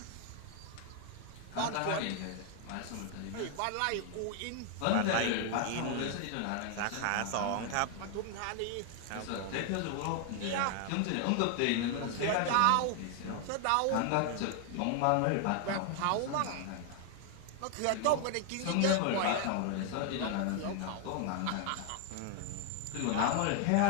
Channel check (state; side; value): different; both; correlation 0.00